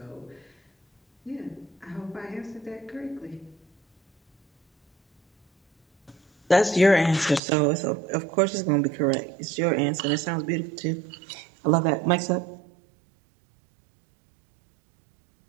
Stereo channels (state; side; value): drops out; left; at 7.4 s